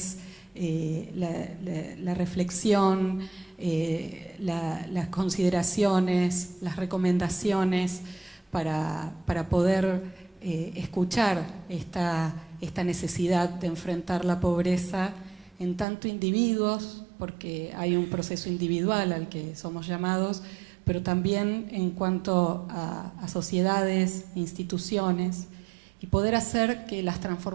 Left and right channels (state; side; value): drops out; left; at 15.9 s